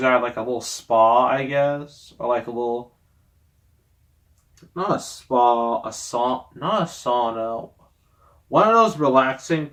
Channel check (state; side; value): identical; both; correlation 1.00